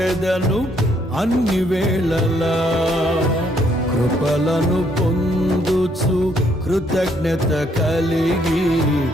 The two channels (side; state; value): both; normal; correlation 0.69